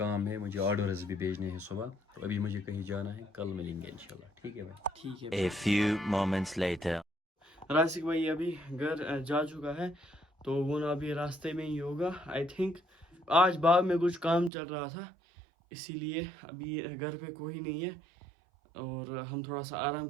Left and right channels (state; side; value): drops out; left; at 14.5 s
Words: ہے, مجھے آرڈرز بھی بھیجنے ہیں صبح, تو ابھی مجھے کہیں جانا ہے. کل ملیں گے انشاءاللہ. ٹھیک ہے بھائی. ٹھیک ہے. A few moments later. راسک بھائی ابھی گھر جا چکا ہے, تو وہ نا ابھی راستے میں ہی ہوگا آئی تھنک. آج باغ میں کچھ کام چل رہا تھا, اسی لیے ابھی گھر پہ کوئی نہیں ہے, اور ہم تھوڑا سا آرام